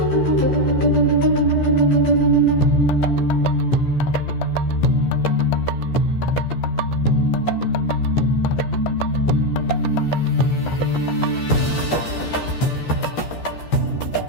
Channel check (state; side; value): late; right; 12 ms